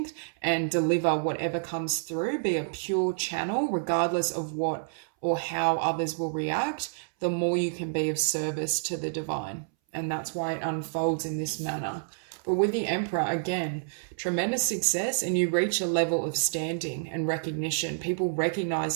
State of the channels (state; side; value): silent; left; 59 dB below the other